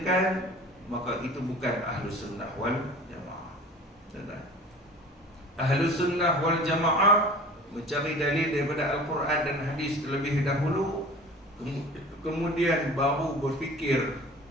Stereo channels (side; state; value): both; normal; correlation 0.42